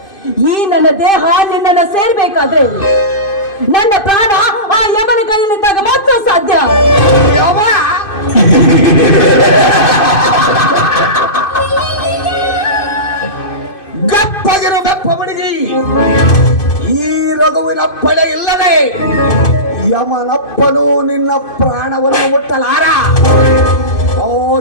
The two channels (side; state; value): right; late; 2.5 ms